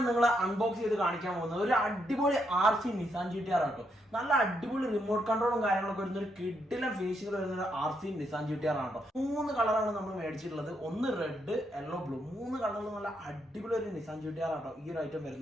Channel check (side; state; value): both; normal; correlation 0.78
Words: നിങ്ങൾ അൺബോക്സ് ചെയ്ത് കാണിക്കാൻ പോകുന്നത് ഒരു അടിപൊളി RC നിസാൻ GT-R ആട്ടോ. നല്ല അടിപൊളി റിമോട്ട് കൺട്രോളും കാര്യങ്ങളൊക്കെ വരുന്ന ഒരു കിഡിലും ഫിനിഷിംഗ് വരുന്ന ഒരു RC നിസാൻ GT-R ആട്ടോ. 3 കളറാണ് നമ്മൾ മേടിച്ചിട്ടുള്ളത്. ഒന്ന് റെഡ്, യെല്ലോ, ബ്ലൂ. 3 കളറിൽ നല്ല അടിപൊളി ഒരു നിസാൻ GT-R ആട്ടോ ഈ ഒരു ഐറ്റം